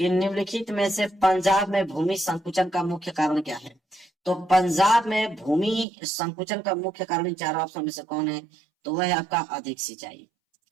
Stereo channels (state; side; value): drops out; left; at 5.9 s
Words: निम्नलिखित में से पंजाब में भूमि संकुचन का मुख्य कारण क्या है। तो पंजाब में भूमि संकुचन का मुख्य कारण इन चारों ऑप्शन में से कौन है, तो वह है आपका अधिक सिंचाई।